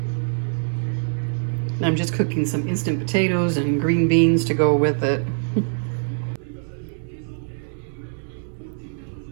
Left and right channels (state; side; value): silent; left; digital silence